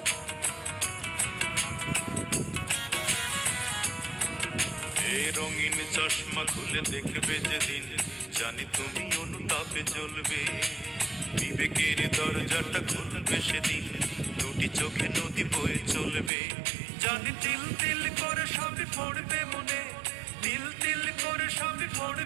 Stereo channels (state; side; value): drops out; left; at 16.3 s